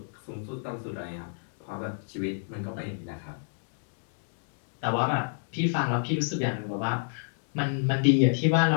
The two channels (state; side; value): silent; right; digital silence